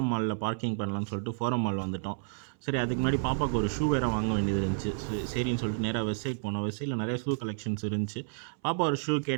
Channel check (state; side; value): silent; left; 57 dB below the other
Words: மாலில் பார்க்கிங் பண்ணலான்னு சொல்லிட்டு ஃபோரம் மால் வந்துவிட்டோம். சரி, அதுக்கு முன்னாடி பாப்பாவுக்கு ஒரு ஷூ வேறு வாங்க வேண்டியது இருந்துச்சு. சரின்னு சொல்லிட்டு நேராக வெஸ்ட் சைட் போனோம். வெஸ்ட் சைடில் நிறைய ஷூ கலெக்ஷன்ஸ் இருந்துச்சு. பாப்பா ஒரு ஷூ